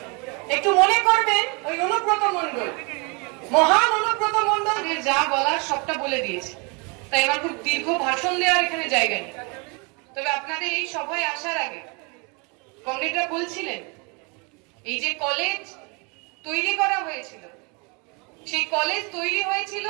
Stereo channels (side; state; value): left; quieter; 31.8 dB